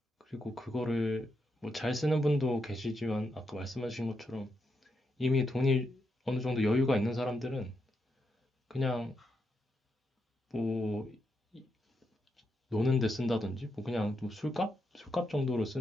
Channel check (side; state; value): both; normal; correlation 0.82